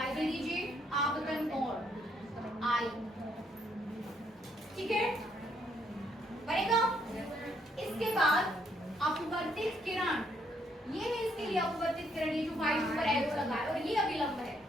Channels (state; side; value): normal; both; correlation 0.72